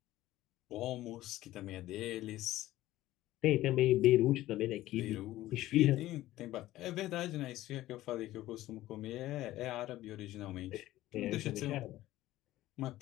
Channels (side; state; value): right; quieter; 15.6 dB